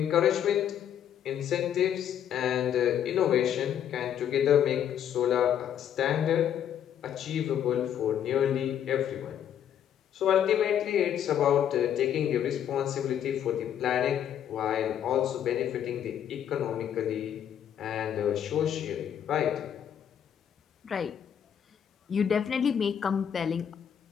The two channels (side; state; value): right; quieter; 9.5 dB